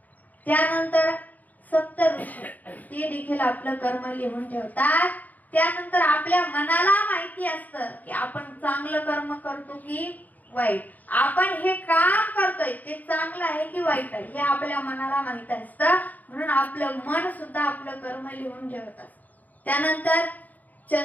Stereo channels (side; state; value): right; late; 0.081 ms